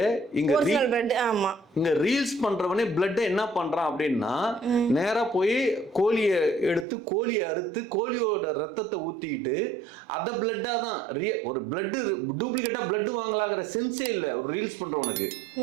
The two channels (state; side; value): drops out; left; at 6.9 s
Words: இங்கே ரீல்ஸ் பண்ணுறவனே பிளட்டை என்ன பண்ணுறான் அப்படின்னா, நேராக போய் கோழியை எடுத்து கோழியை அறுத்து கோழியோட ரத்தத்தை ஊற்றிக்கிட்டு அதை பிளட்டாக தான் ஒரு பிளட்டு டூப்ளிகேட்டாக பிளட்டு வாங்கலாங்கிற சென்ஸே இல்லை ஒரு ரீல்ஸ் பண்ணுறவனுக்கு.